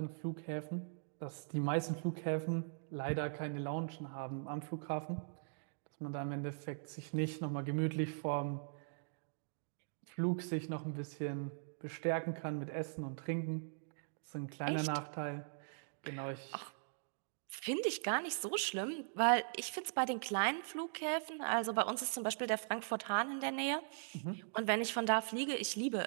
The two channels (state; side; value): silent; left; digital silence